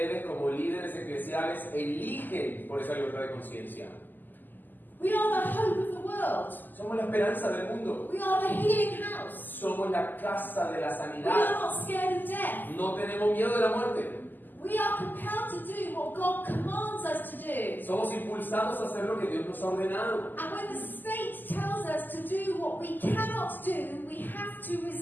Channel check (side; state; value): right; late; 0.088 ms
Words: como líderes eclesiales eligen por esa libertad de conciencia. We are the hope of the world. Somos la esperanza del mundo. We are the healing house. Somos la casa de la We are sanidad. not scared of death. No tenemos miedo de la muerte. We are compelled to do what God commands us to do. Somos impulsados a hacer lo que Dios nos ha ordenado. And when the state tells us to do what we cannot do, we have to